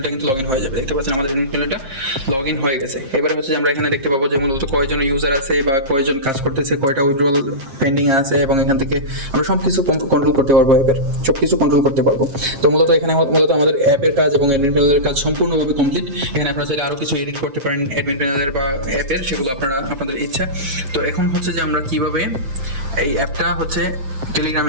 কিন্তু লগ ইন হয়ে যাবে। দেখতে পাচ্ছেন আমাদের অ্যাডমিন প্যানেলটা লগ ইন হয়ে গেছে। এবারে হচ্ছে যে আমরা এখানে দেখতে পাবো যে মূলত কয়জন ইউজার আছে বা কয়জন কাজ করতেছে, কয়টা উইথড্রল পেন্ডিং আছে এবং এখান থেকে আমরা সব কিছু কন্ট্রোল করতে পারবো। সব কিছু কন্ট্রোল করতে পারবো। তো মূলত এখানে মূলত আমাদের অ্যাপের কাজ এবং অ্যাডমিন প্যানেলের কাজ সম্পূর্ণভাবে কমপ্লিট। এখানে আপনারা চাইলে আরও কিছু এডিট করতে পারেন অ্যাডমিন প্যানেলের বা অ্যাপের, সেগুলো আপনারা আপনাদের ইচ্ছা। তো এখন হচ্ছে যে আমরা কীভাবে এই অ্যাপটা হচ্ছে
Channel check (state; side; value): late; left; 7.5 ms